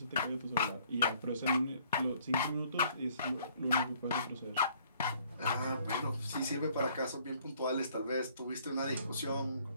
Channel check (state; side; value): inverted; both; correlation -0.61